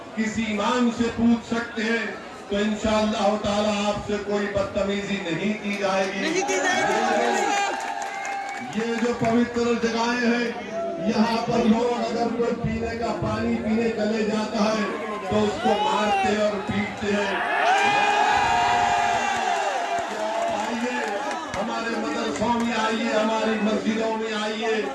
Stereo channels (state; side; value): identical; both; correlation 1.00